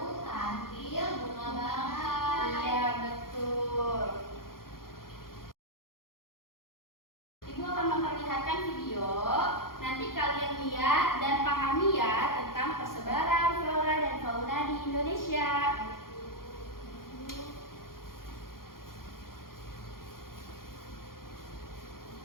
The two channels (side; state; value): right; late; 0.92 ms